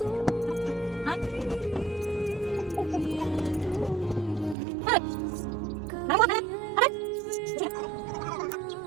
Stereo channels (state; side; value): drops out; left; at 4.5 s